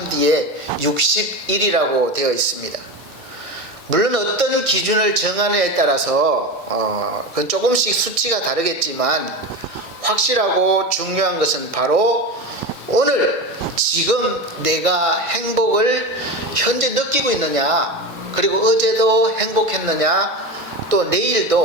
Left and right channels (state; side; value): normal; both; correlation 0.23